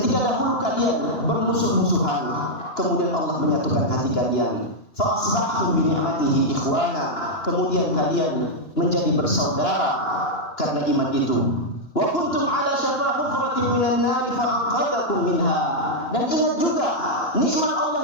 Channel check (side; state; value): right; late; 2.9 ms